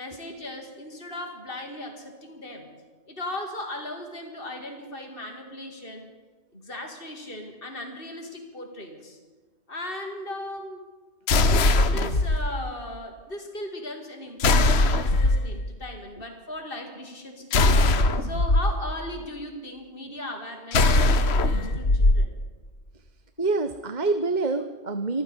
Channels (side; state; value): right; late; 3.0 ms